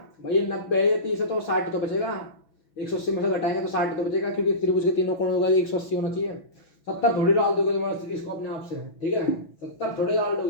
भाई, ये 90 है, ये 30 है तो 60 तो बचेगा, 180 में से घटाएंगे तो 60 तो बचेगा, क्योंकि त्रिभुज के तीनों कोणों का 180 होना चाहिए। 70 थोड़ी डाल दोगे तुम इसको अपने आप से, ठीक है, 70 थोड़ी डाल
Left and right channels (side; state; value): right; late; 6.1 ms